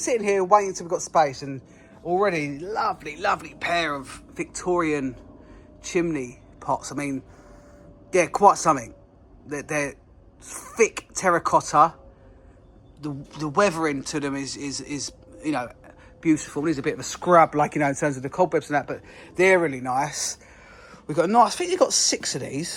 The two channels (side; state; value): both; identical; correlation 1.00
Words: here waiting until we've got space, and already lovely, lovely pair of Victorian chimney pots. I mean, yeah, quite something. They're thick terracotta. The weathering to them is beautiful. There's a bit of a scrub, in terms of the cobwebs and that, but they're really nice. We've got I think we've got 6 of